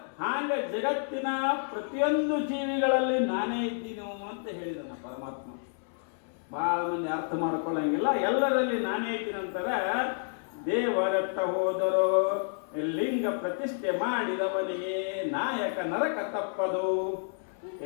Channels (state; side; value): silent; right; 58 dB below the other